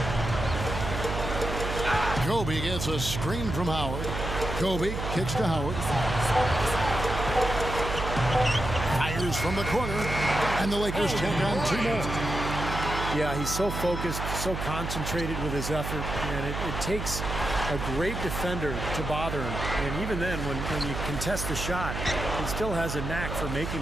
Kobe gets a screen from Howard. Kobe kicks to Howard. Fires from the corner, and the Lakers take on 2 more. Yeah, he's so focused, so concentrated with his effort, and it takes a great defender to bother him. And even then, when you contest the shot, he still has a knack for making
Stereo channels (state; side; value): noise; right; hum, 5 dB below the sound